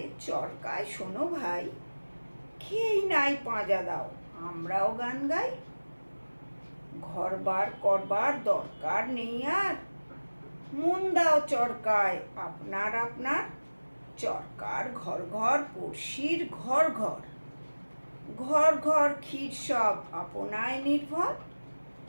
চরকায় শোনো ভাই, খেয়েই নাই পাঁজা দাও আমরাও গান গাই। ঘরবার করবার দরকার নেই আর, মন দাও চরকায় আপনার আপনার। চরকার ঘর ঘর পড়শির ঘর ঘর, ঘর ঘর ক্ষীর সব আপনায় নির্ভর।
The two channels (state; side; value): inverted; both; correlation -1.00